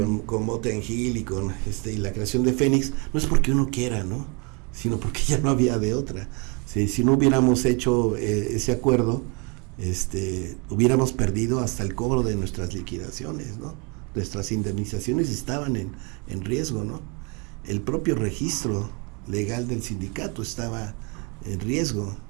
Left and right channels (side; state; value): left; quieter; 31.1 dB